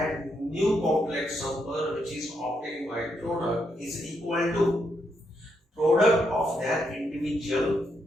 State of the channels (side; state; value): both; normal; correlation 0.79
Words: new complex number which is obtained by product is equal to product of their individual